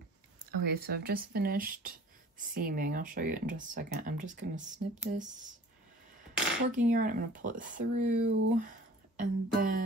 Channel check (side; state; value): both; normal; correlation 0.48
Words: Okay, so I've just finished seaming. I'll show you in just a second. I'm just going to snip this working yarn. I'm going to pull it through, and